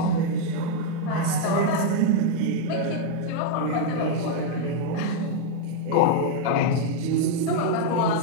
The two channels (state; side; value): different; both; correlation 0.00